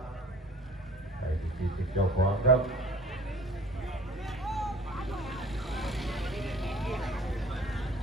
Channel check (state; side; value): normal; both; correlation 0.48